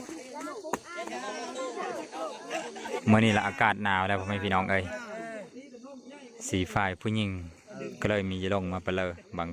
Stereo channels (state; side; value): identical; both; correlation 1.00